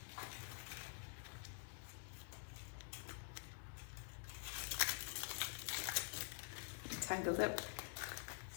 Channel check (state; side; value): silent; right; digital silence